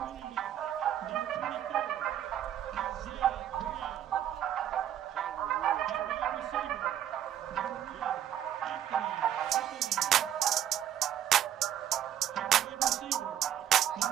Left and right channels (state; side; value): quieter; left; 10.8 dB